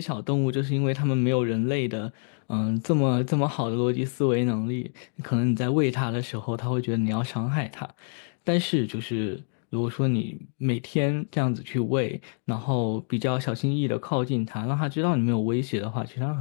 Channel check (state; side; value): silent; right; digital silence